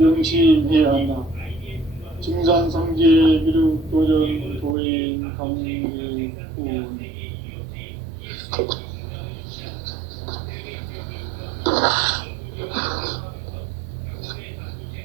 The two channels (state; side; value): drops out; left; at 4.8 s